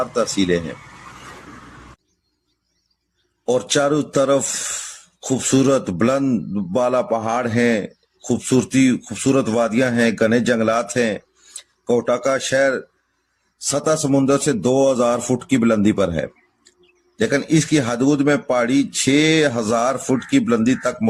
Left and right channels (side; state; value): both; identical; correlation 1.00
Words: तहसीलें हैं और चारों तरफ खूबसूरत बुलंद बाला पहाड़ हैं, खूबसूरत वादियां हैं, घने जंगलात हैं। कोहटा का शहर सतह समुद्र से 2000 फुट की बुलंदी पर है, लेकिन इसकी हदूद में पहाड़ी 6000 फुट की बुलंदी तक